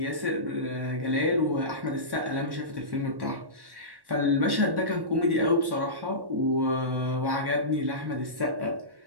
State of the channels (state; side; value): late; left; 1.1 ms